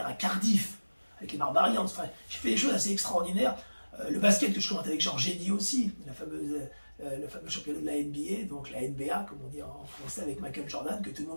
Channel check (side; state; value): both; inverted; correlation -1.00